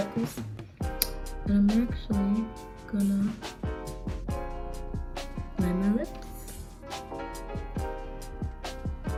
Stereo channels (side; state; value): both; identical; correlation 1.00